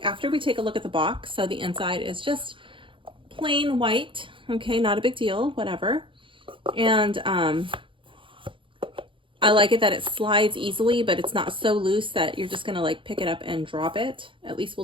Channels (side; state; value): left; late; 0.25 ms